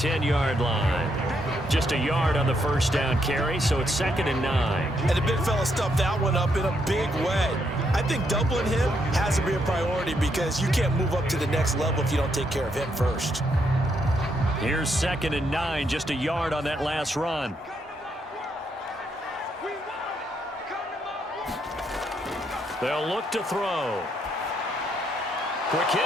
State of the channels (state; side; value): normal; both; correlation 0.76